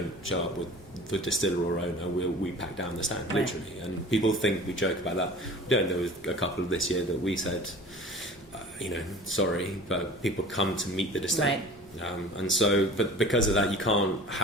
show up with the distiller or owner, we pack down the stand, literally. And people think we joke about that. We don't. There was a couple of this year that we said, sorry, but people come to meet the distiller. Right. And so, but because of that, you can't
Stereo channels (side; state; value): both; normal; correlation 0.42